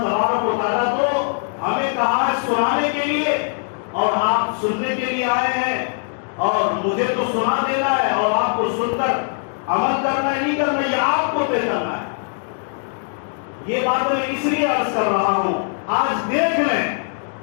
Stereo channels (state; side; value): silent; right; digital silence